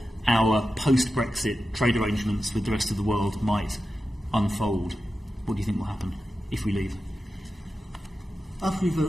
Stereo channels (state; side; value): normal; both; correlation 0.92